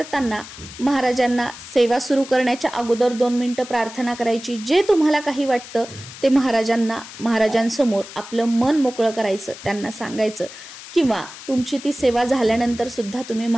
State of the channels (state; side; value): noise; left; hiss, 15 dB below the sound